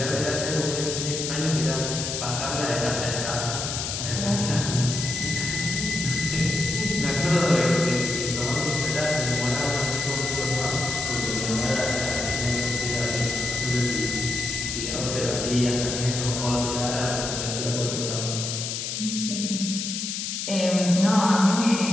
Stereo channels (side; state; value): left; noise; hiss, 3 dB below the sound